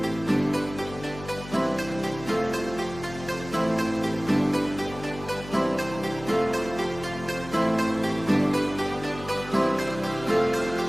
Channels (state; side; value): noise; left; hum, 14 dB below the sound